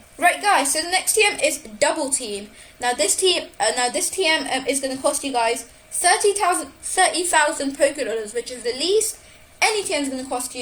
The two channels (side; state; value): both; identical; correlation 1.00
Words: Right, guys, so the next TM is Double Team. Now this TM is going to cost you guys 30,000 pokedollars, which is the least any TM is going to cost